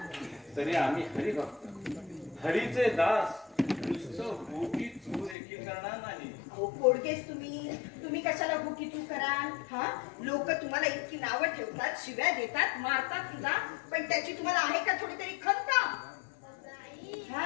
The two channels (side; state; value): right; drops out; at 5.4 s